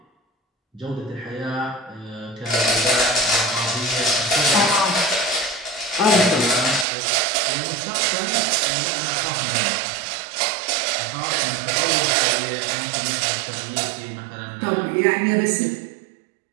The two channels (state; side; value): drops out; left; at 6.9 s